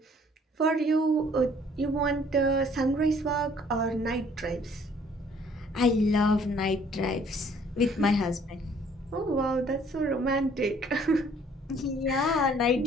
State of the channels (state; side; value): normal; both; correlation 0.59